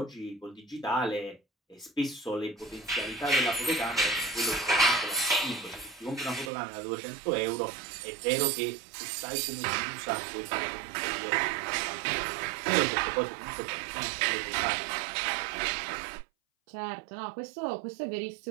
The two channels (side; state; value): left; drops out; at 6.5 s